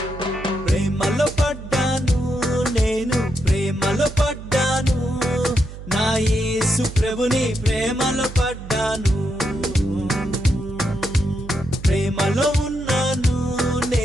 ప్రేమలో పడ్డాను, నేను ప్రేమలో పడ్డాను, నా యేసు ప్రభుని ప్రేమలో పడ్డాను, ప్రేమలో ఉన్నాను,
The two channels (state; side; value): noise; right; hum, 13 dB below the sound